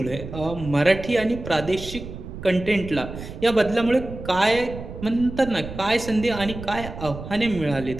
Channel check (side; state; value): right; noise; rumble, 11 dB below the sound